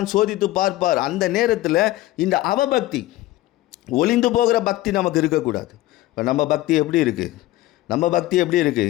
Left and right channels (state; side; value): quieter; right; 16.6 dB